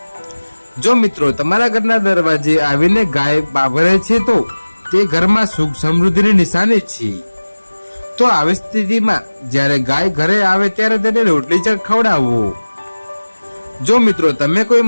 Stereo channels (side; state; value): both; inverted; correlation -1.00